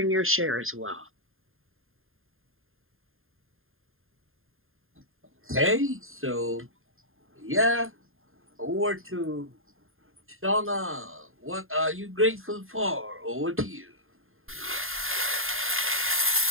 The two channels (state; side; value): late; left; 0.60 ms